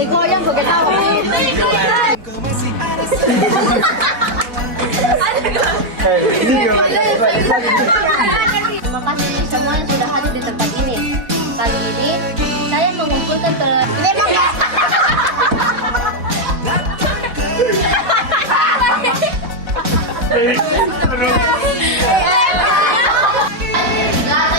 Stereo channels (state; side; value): late; left; 4.1 ms